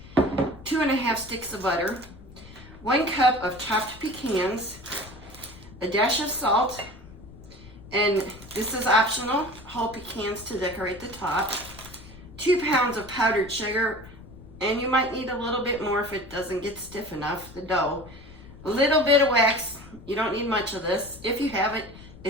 2.5 sticks of butter, 1 cup of chopped pecans, a dash of salt, and this is optional, whole pecans to decorate the top, 2 pounds of powdered sugar, and you might need a little bit more if it doesn't get stiff enough, the dough. A little bit of wax, you don't need much of this. If you have it,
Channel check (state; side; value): noise; left; rumble, 18 dB below the sound